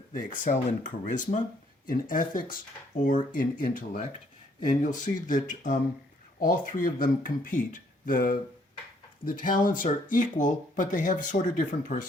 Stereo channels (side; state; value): both; normal; correlation 0.67